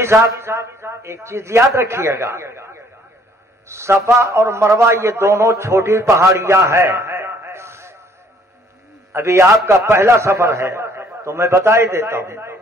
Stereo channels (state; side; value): normal; both; correlation 0.61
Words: صاحب ایک چیز یاد رکھیے گا، صفا اور مروہ یہ دونوں چھوٹی پہاڑیاں ہیں۔ ابھی آپ کا پہلا سفر ہے تو میں بتا ہی دیتا ہوں،